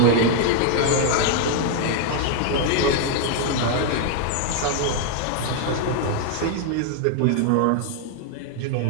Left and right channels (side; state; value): both; different; correlation 0.00